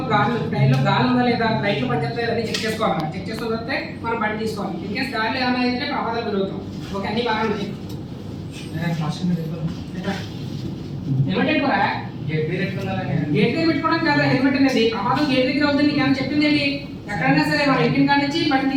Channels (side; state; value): both; identical; correlation 1.00